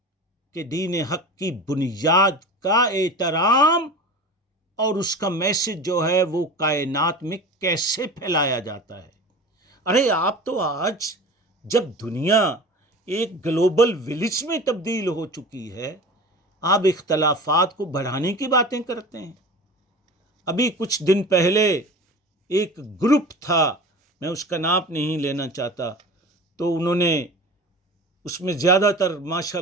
کہ دین حق کی بنیاد کا احترام اور اس کا میسج جو ہے وہ کائنات میں کیسے پھیلایا جاتا ہے۔ ارے آپ تو آج جب دنیا ایک گلوبل ولیج میں تبدیل ہو چکی ہے، آپ اختلافات کو بڑھانے کی باتیں کرتے ہیں۔ ابھی کچھ دن پہلے ایک گروپ تھا، میں اس کا نام نہیں لینا چاہتا، تو انہوں نے اس میں زیادہ تر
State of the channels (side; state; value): both; normal; correlation 0.35